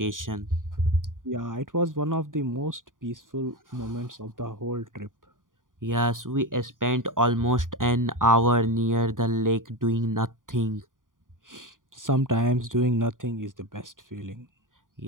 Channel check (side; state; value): left; late; 0.89 ms